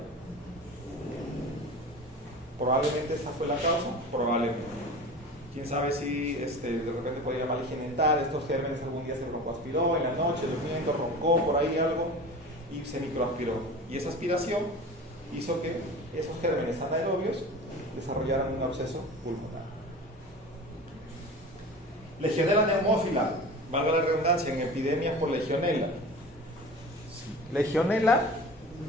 Probablemente esta fue la causa, probablemente. Quién sabe si de repente podía mal higiene dental, estos gérmenes algún día se broncoaspiró en la noche, durmiendo, roncó por ahí algo y se microaspiró. Y esa aspiración hizo que esos gérmenes anaerobios desarrollaran un absceso pulmonar. Legionela neumófila, valga la redundancia, en epidemias por legionela. Legionela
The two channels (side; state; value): both; normal; correlation 0.35